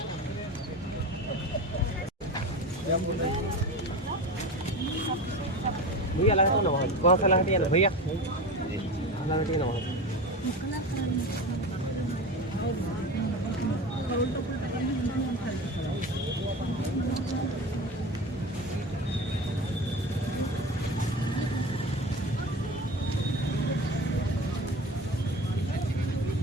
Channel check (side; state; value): both; normal; correlation 0.29